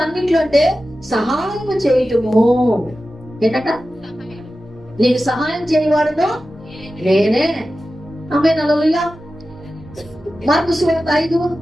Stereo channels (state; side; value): normal; both; correlation 0.94